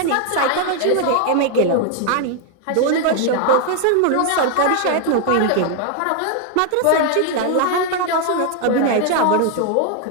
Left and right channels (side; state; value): both; different; correlation 0.00